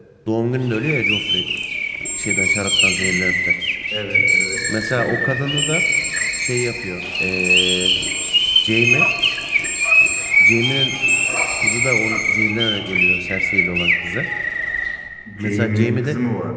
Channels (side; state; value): both; identical; correlation 1.00